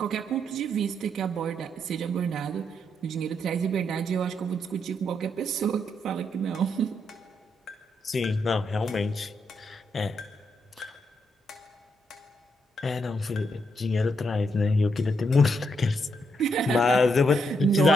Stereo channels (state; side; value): normal; both; correlation 0.78